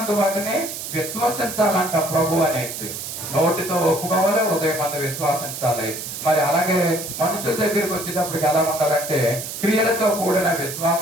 వాటిని విశ్వసించాలంట. ప్రభు అనేసి నోటితో ఒప్పుకోవాలి, హృదయమందు విశ్వసించాలి. మరి అలాగే మనుషుల దగ్గరికి వచ్చేటప్పటికి ఎలా ఉండాలంటే క్రియలతో కూడిన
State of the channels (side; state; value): right; noise; hiss, 7 dB below the sound